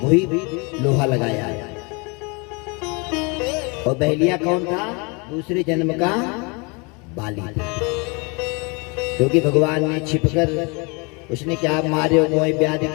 वही लोहा लगाया। और बहेलिया कौन था? दूसरे जन्म का बाली था, क्योंकि भगवान ने छिपकर, उसने क्या मारे हो मोए व्याध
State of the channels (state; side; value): quieter; right; 30.4 dB